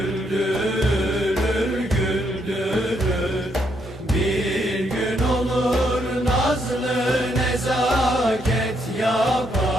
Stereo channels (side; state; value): both; normal; correlation 0.75